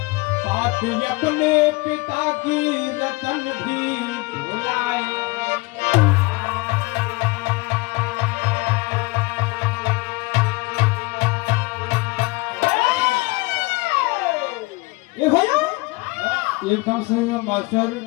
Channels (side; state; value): right; quieter; 24.4 dB